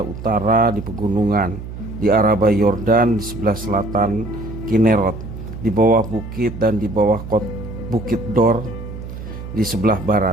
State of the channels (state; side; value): noise; right; hum, 10 dB below the sound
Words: utara di pegunungan, di Araba Yordan, di sebelah selatan Kinerot, di bawah bukit dan di bawah bukit Dor di sebelah